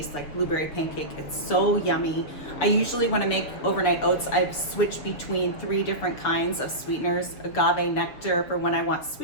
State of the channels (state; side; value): late; right; 6.6 ms